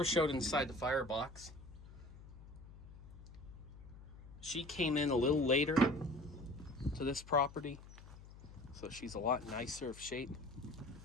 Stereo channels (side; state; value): left; noise; hum, 17 dB below the sound